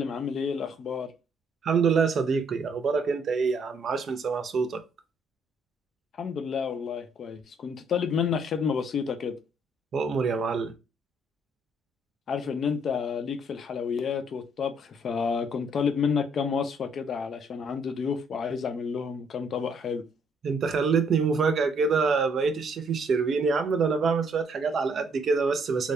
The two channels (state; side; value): normal; both; correlation 0.67